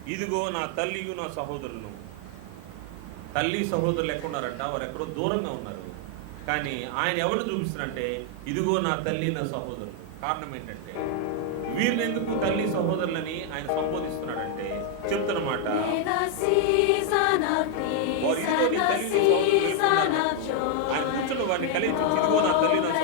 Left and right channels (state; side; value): different; both; correlation 0.00